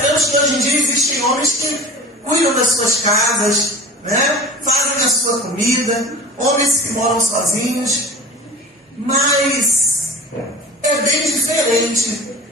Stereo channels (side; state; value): both; normal; correlation 0.37